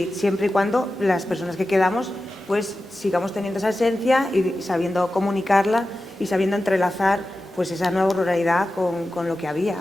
y cuando las personas que quedamos pues sigamos teniendo esa esencia y sabiendo comunicarla y sabiendo entrelazar pues esa nueva ruralidad con lo que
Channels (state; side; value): normal; both; correlation 0.93